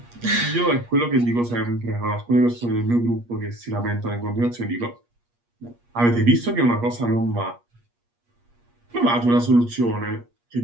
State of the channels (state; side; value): late; left; 8.4 ms